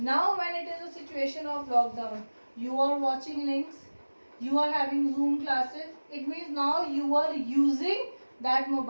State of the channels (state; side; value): inverted; both; correlation -1.00